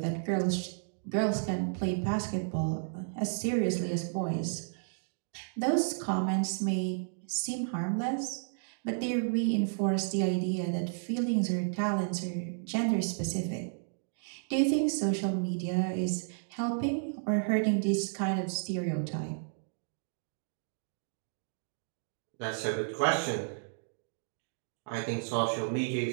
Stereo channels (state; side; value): silent; left; digital silence